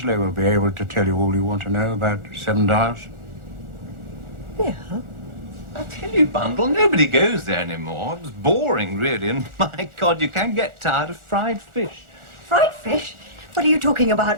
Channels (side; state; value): left; late; 1.4 ms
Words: will be able to tell you all you want to know about Seven Dials. Bill? I tell you, Bundle, nobody goes there anymore. It was boring, really, and my God, you can get tired of fried fish. Fried fish? What are you talking